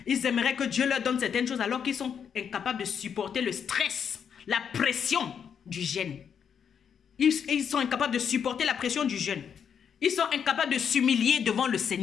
Ils aimeraient que Dieu leur donne certaines choses alors qu'ils sont incapables de supporter le stress, la pression du jeûne. Ils sont incapables de supporter la pression du jeûne. Ils sont incapables de s'humilier devant le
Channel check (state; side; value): quieter; right; 7.5 dB